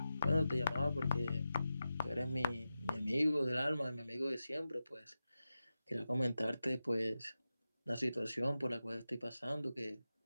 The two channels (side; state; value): both; inverted; correlation -0.92